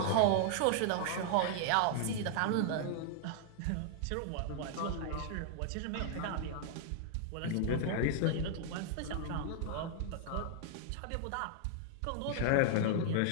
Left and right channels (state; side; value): different; both; correlation -0.01